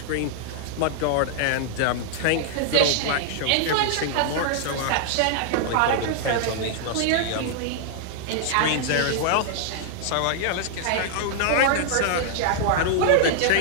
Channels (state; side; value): different; both; correlation -0.01